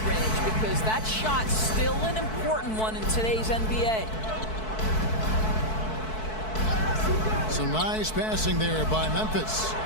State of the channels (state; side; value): late; right; 4.6 ms